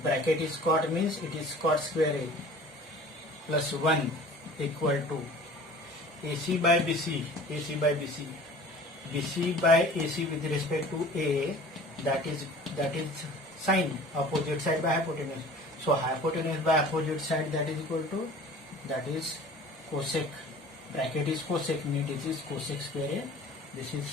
Bracket is cot, means it is cot square A plus 1 equal to AC by BC. BC by AC with respect to A, that is sine, opposite side by hypotenuse. So hypotenuse by opposite side, that is equal to, that is cosec. Bracket is cosec, means it is cosec square A. This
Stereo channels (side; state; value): both; normal; correlation 0.45